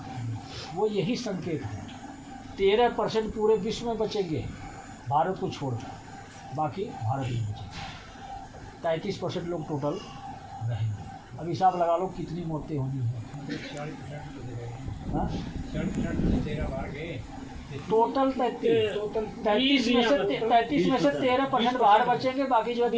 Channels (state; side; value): identical; both; correlation 1.00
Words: वो यही संकेत है। 13% पूरे विश्व में बचेंगे भारत को छोड़कर, बाकी भारत में बचेंगे। 33% लोग टोटल रहेंगे। अब हिसाब लगा लो कितनी मौतें होनी है। टोटल 33 में से 13% बाहर बचेंगे, बाकी जो